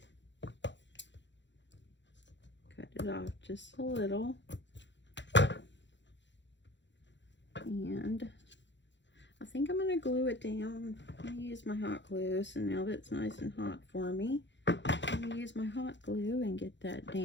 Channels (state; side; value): late; right; 0.53 ms